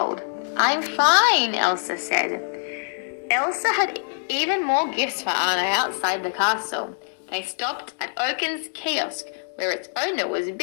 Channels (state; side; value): silent; right; digital silence